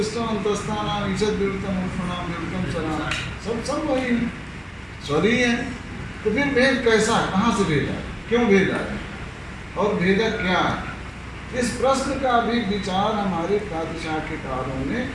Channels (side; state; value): both; identical; correlation 1.00